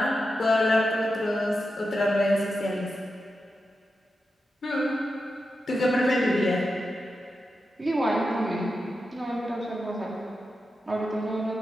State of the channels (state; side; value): normal; both; correlation 0.89